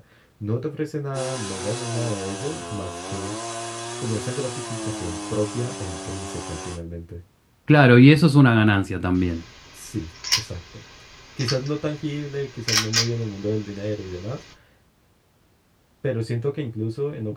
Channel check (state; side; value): identical; both; correlation 1.00